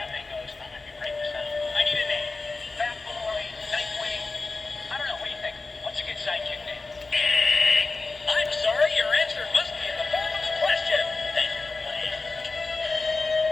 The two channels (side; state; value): right; quieter; 3.7 dB